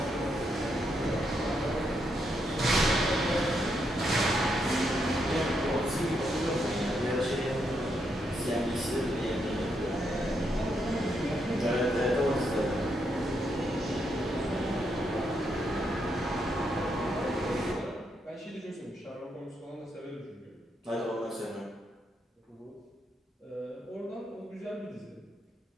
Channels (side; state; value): both; normal; correlation 0.79